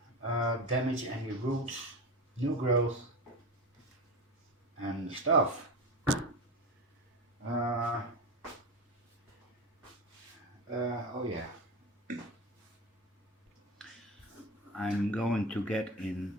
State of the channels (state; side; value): normal; both; correlation 0.24